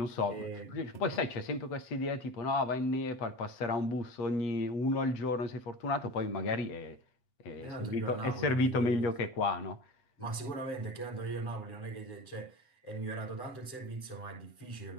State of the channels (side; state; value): right; late; 7.8 ms